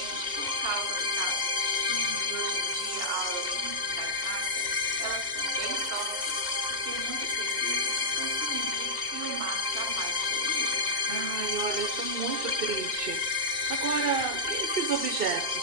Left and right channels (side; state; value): left; late; 2.8 ms